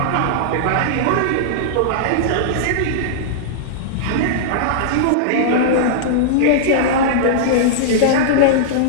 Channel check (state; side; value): different; both; correlation -0.02